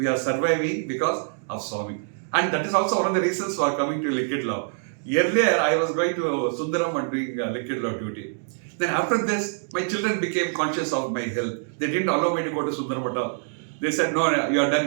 are surviving because of Swami. And that is also one of the reasons for coming to Liquid Love. Earlier, I was going to Sundaram and doing Liquid Love duty. Then after this, my children became conscious of my health. They didn't allow me to go to Sundaram at all. They said, no, you are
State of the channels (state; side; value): silent; left; 62 dB below the other